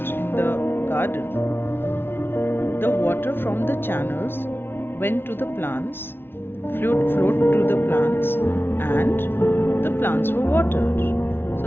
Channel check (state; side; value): late; right; 0.11 ms